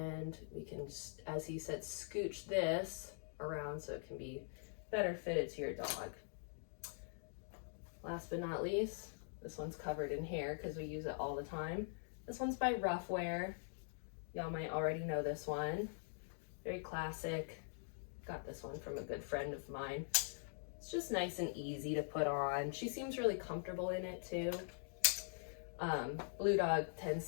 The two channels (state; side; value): silent; right; digital silence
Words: we can, as he said, scooch this around so it can be better fitted to your dog. Last but not least, this one's covered in hair because we use it all the time. This one's by Ruffwear. Y'all might already know this one. Very classic. Got this one from a good friend of mine. It's just nice and easy to put on. She seems really comfortable in it too. Blue Dog